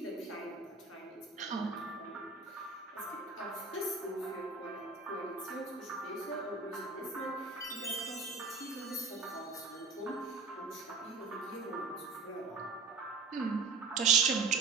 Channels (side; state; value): left; quieter; 4.4 dB